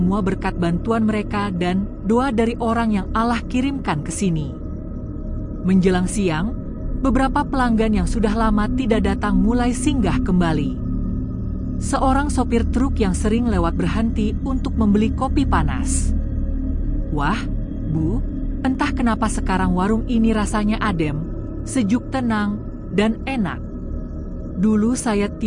berkat bantuan mereka dan doa dari orang yang Allah kirimkan ke sini. Menjelang siang, beberapa pelanggan yang sudah lama tidak datang mulai singgah kembali. Seorang sopir truk yang sering lewat berhenti untuk membeli kopi panas. Wah, Bu, entah kenapa sekarang warung ini rasanya adem, sejuk, tenang, dan enak. Dulu saya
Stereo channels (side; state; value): both; identical; correlation 1.00